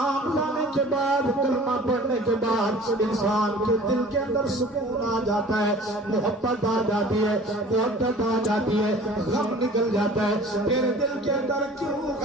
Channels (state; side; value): normal; both; correlation 0.45